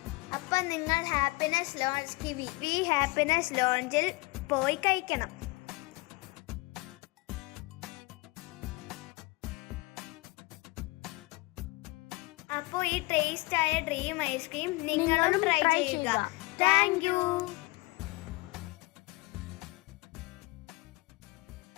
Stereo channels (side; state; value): right; quieter; 24.3 dB